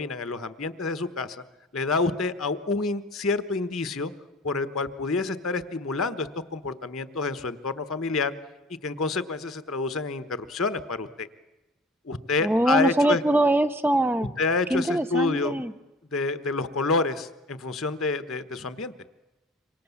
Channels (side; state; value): both; normal; correlation 0.45